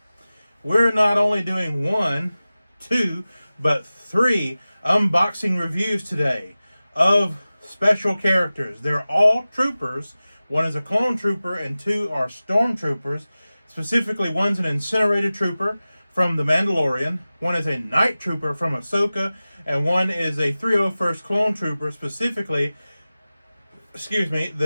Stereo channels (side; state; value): both; inverted; correlation -0.96